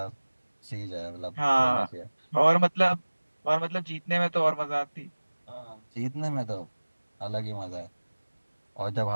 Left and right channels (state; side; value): inverted; both; correlation -1.00